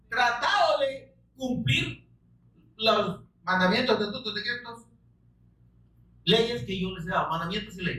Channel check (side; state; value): both; identical; correlation 1.00